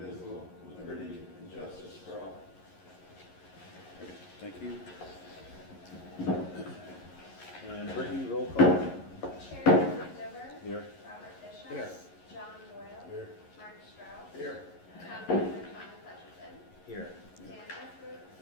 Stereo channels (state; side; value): late; right; 11 ms